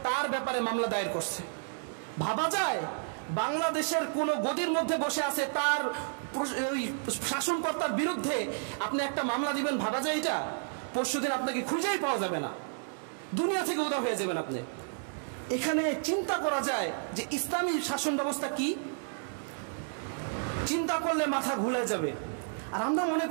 তার ব্যাপারে মামলা দায়ের করছে। ভাবা যায় বাংলাদেশের কোন গদির মধ্যে বসে আছে, তার শাসনকর্তার বিরুদ্ধে আপনি একটা মামলা দিবেন? ভাবা যায় এটা? পরশুদিন আপনাকে খুঁজেই পাওয়া যাবে না, দুনিয়া থেকে উধাও হয়ে যাবেন আপনি। এখানে চিন্তা করা যায় যে ইসলামী শাসন ব্যবস্থা কি, চিন্তা করলে মাথা ঘুরে যাবে। আর আমরা মনে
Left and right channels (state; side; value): silent; left; digital silence